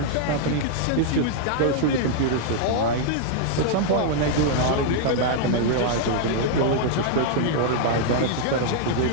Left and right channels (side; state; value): both; different; correlation -0.01